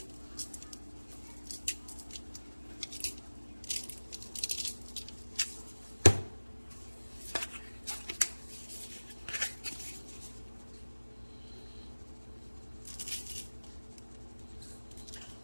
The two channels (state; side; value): inverted; both; correlation -1.00